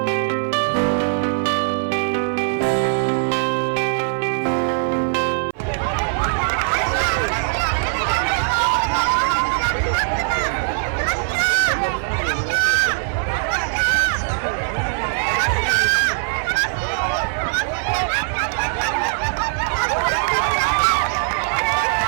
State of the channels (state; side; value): silent; left; 56 dB below the other